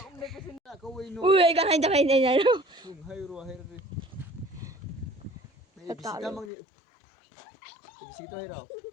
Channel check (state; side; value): drops out; right; at 6.5 s